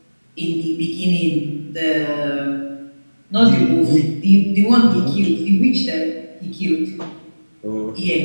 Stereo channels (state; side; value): inverted; both; correlation -1.00